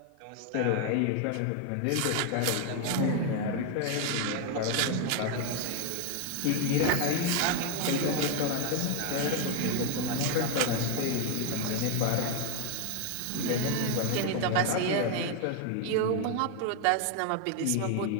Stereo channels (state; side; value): different; both; correlation 0.01